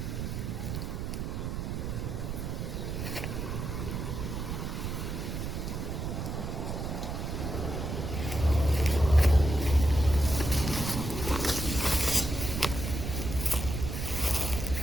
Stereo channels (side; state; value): right; noise; rumble, 4 dB below the sound